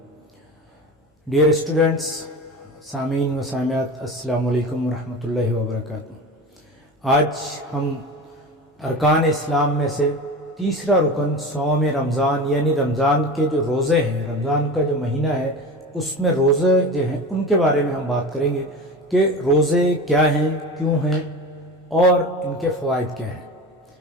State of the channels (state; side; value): normal; both; correlation 0.30